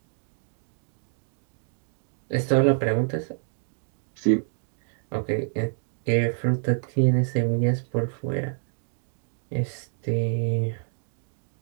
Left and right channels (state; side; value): silent; left; digital silence